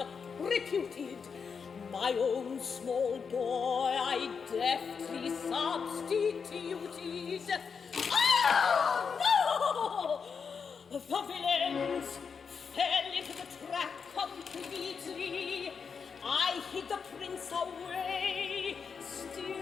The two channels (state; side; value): quieter; right; 5.9 dB